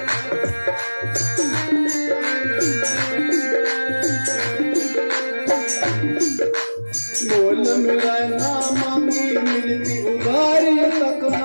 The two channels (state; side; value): inverted; both; correlation -1.00